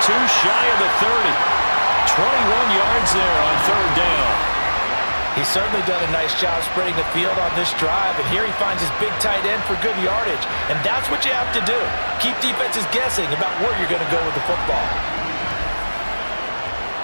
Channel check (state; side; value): inverted; both; correlation -1.00